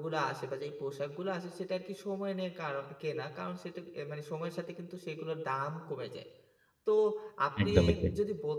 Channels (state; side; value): identical; both; correlation 1.00